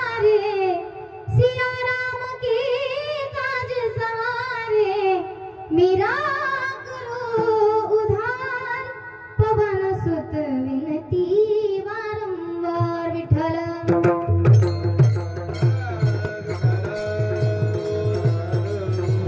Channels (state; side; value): identical; both; correlation 1.00